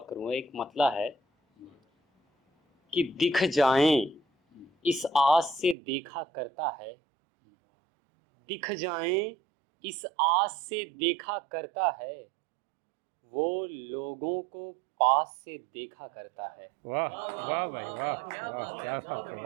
करूँगा। एक मतला है कि दिख जाएं इस आस से देखा करता है, दिख जाएं इस आस से देखा करता है, वो लोगों को पास से देखा करता है। वाह वाह भाई वाह वाह, क्या बात है।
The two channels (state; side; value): drops out; left; at 5.8 s